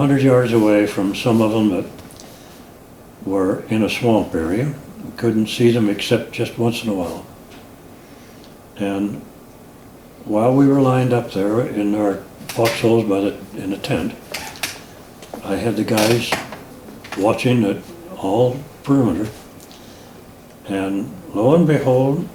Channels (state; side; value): identical; both; correlation 1.00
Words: yards away from some of them that were in a swamp area. We couldn't see them except just once in a while. And while we were lined up there in our foxholes in the tent, I had the guys watching at all perimeter. And lo and behold,